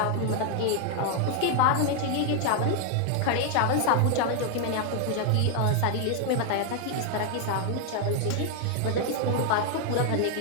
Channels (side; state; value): both; different; correlation 0.00